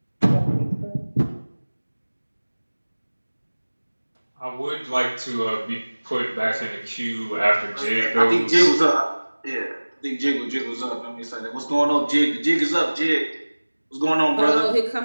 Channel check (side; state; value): both; inverted; correlation -1.00